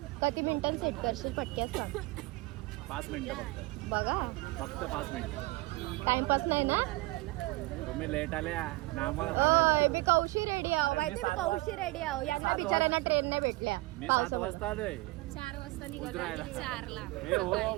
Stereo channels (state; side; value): quieter; left; 22.1 dB